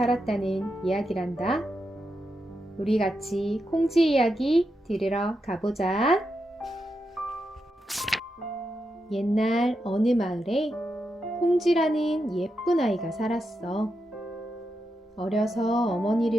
이야기란다. 우리 같이 콩쥐 이야기 들으러 가보자. 옛날 어느 마을에 콩쥐라는 예쁜 아이가 살았어. 어려서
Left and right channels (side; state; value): both; normal; correlation 0.86